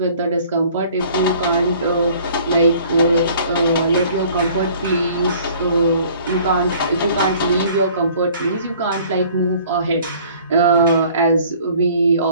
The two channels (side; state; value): both; inverted; correlation -0.53